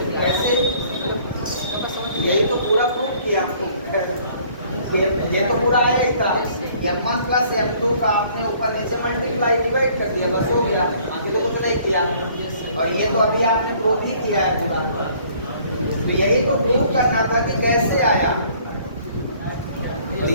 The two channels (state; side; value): inverted; both; correlation -0.58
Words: कैसे? यही तो पूरा प्रूफ किया आपको। ये तो पूरा आया ही था। M1 प्लस M2 का आपने ऊपर नीचे मल्टीप्लाई डिवाइड कर दिया, बस हो गया, अभी तो कुछ नहीं किया। और ये तो अभी आपने प्रूफ ही किया है पूरा। तो यही तो प्रूफ करना था कि कैसे आया, तो